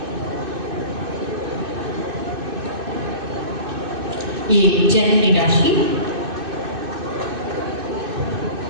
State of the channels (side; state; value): left; late; 2.6 ms